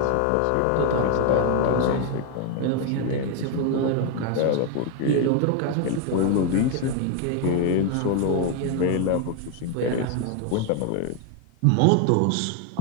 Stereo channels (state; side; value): different; both; correlation 0.01